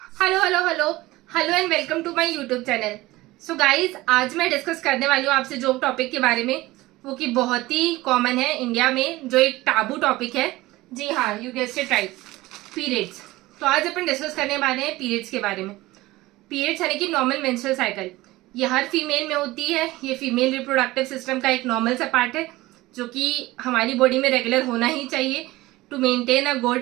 Hello hello hello hello and welcome to my YouTube channel. So guys, आज मैं discuss करने वाली हूँ आपसे जो टॉपिक के बारे में, वो कि बहुत ही कॉमन है इंडिया में, जो एक टाबू टॉपिक है। जी हाँ, you guessed it right, periods. तो आज अपन डिस्कस करने वाले हैं पीरियड्स के बारे में। पीरियड्स यानी कि नॉर्मल मेंस्ट्रुअल साइकिल, ये हर फीमेल में होती है। ये फीमेल रिप्रोडक्टिव सिस्टम का एक नॉर्मल सा पार्ट है जो कि हमारी बॉडी में रेगुलर होना ही चाहिए to maintain a good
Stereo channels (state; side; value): quieter; left; 18.8 dB